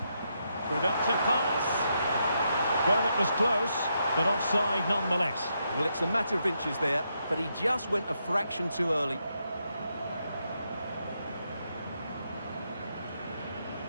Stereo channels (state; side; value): inverted; both; correlation -0.81